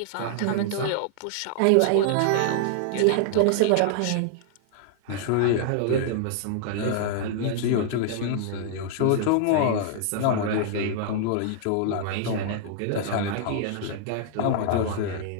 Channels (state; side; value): different; both; correlation -0.01